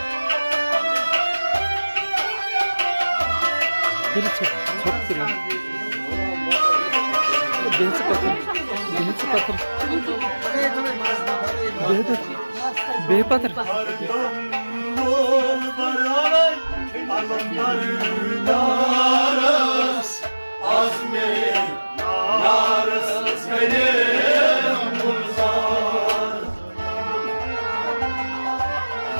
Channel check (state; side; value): inverted; both; correlation -1.00